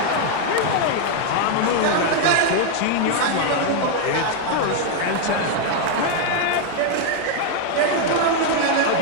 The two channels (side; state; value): both; different; correlation 0.00